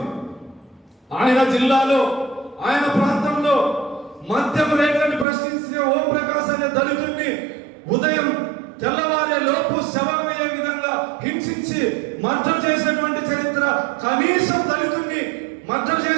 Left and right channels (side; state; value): left; drops out; at 5.2 s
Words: ఆయన జిల్లాలో ఆయన ప్రాంతంలో మద్యం రేట్లను ప్రశ్నించే ఓం ప్రకాశ్ అనే దళితుడిని ఉదయం తెల్లవారే లోపు శవమయ్యే విధంగా హింసించి మర్డర్ చేసినటువంటి చరిత్ర. కనీసం దళితుడిని మర్డర్